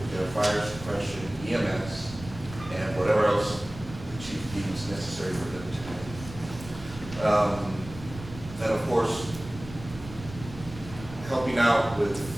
their fire suppression, EMS, and whatever else the chief deems necessary for them to do. And of course, helping out with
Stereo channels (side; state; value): right; noise; rumble, 14 dB below the sound